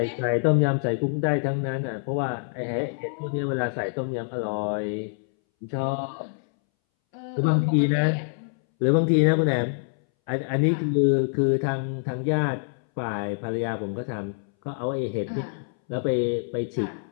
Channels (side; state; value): right; silent; 61 dB below the other